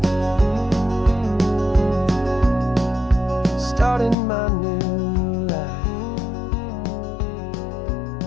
starting my new life,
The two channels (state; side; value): drops out; right; at 4.2 s